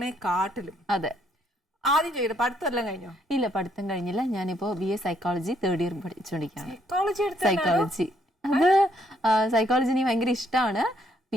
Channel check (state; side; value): normal; both; correlation 0.70